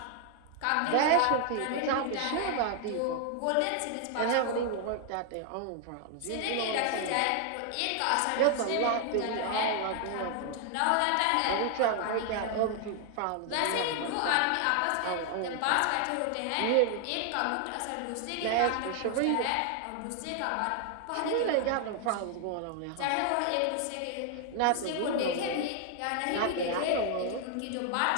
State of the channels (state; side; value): different; both; correlation 0.00